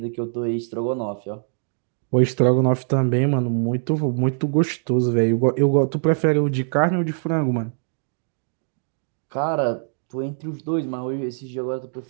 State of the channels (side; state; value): left; silent; digital silence